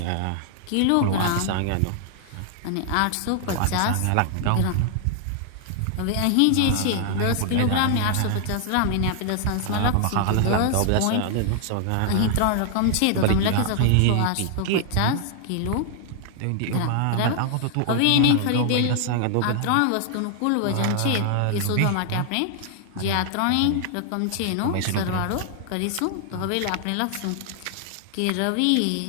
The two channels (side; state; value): both; different; correlation 0.00